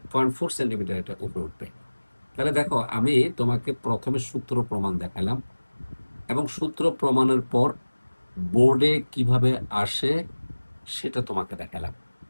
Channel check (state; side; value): inverted; both; correlation -1.00